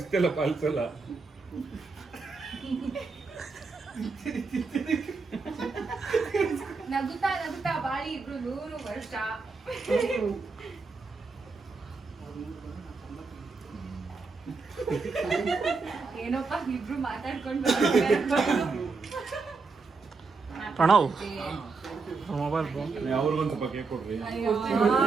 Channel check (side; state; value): left; quieter; 4.3 dB